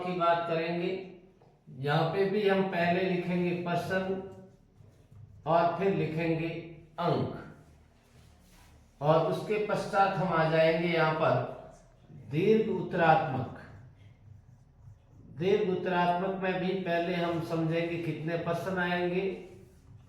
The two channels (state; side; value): identical; both; correlation 1.00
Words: बात करेंगे। यहाँ पे भी हम पहले लिखेंगे प्रश्न और फिर लिखेंगे अंक, और उसके पश्चात हम आ जाएंगे यहाँ पर दीर्घ उत्तरात्मक। दीर्घ उत्तरात्मक में भी पहले हम समझेंगे कितने प्रश्न आएंगे